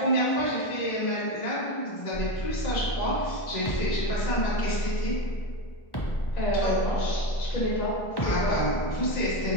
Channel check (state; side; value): late; right; 1.1 ms